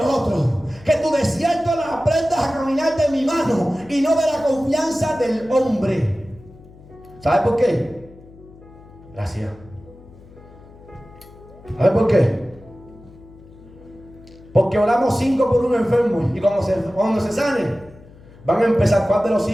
Que tu desierto la aprendas a caminar de mi mano y no de la confianza del hombre. ¿Sabes por qué? Gracias. ¿Sabes por qué? Porque oramos 5 por un enfermo y cuando se sane, van a empezar. ¿Cuál de los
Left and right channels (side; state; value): left; noise; hum, 22 dB below the sound